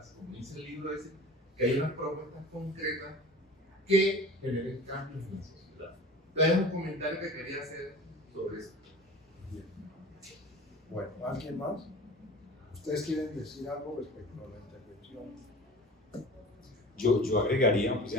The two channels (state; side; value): normal; both; correlation 0.39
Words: como dice el libro ese, que hay unas propuestas concretas que generen cambios en la sociedad. Entonces, un comentario que quería hacer sobre eso. Bueno, ¿alguien más? ¿Ustedes quieren decir algo respecto a la intervención? Yo agregaría, pues